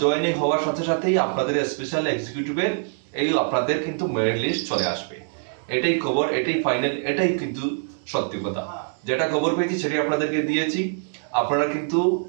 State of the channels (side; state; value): left; silent; digital silence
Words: জয়েনিং হওয়ার সাথে সাথেই আপনাদের স্পেশাল এক্সিকিউটিভের আপনাদের কিন্তু মেরিট লিস্ট চলে আসবে। এটাই খবর, এটাই ফাইনাল, এটাই কিন্তু সত্যি কথা। যেটা খবর পেয়েছি সেটাই আপনাদেরকে দিয়েছি। আপনারা কিন্তু